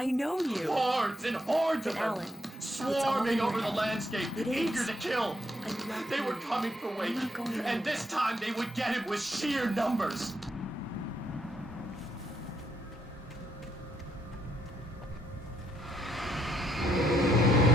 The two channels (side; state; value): both; normal; correlation 0.76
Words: know you. Hordes and hordes of them. Alan, swarming over the landscape, eager to kill. They were coming for Wake, and this time they would get him with sheer numbers.